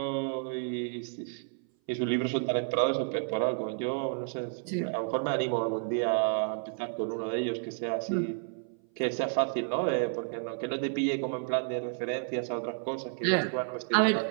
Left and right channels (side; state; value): left; silent; 57 dB below the other